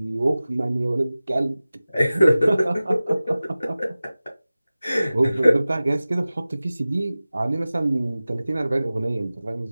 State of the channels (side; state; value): both; inverted; correlation -0.97